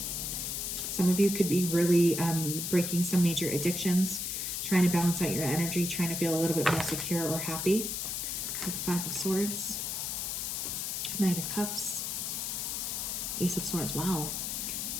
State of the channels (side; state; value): left; noise; hiss, 2 dB below the sound